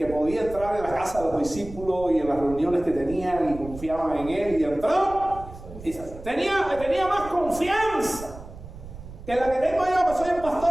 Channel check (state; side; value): noise; right; rumble, 14 dB below the sound